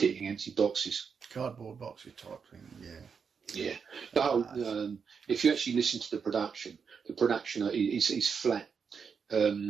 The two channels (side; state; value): left; quieter; 6.1 dB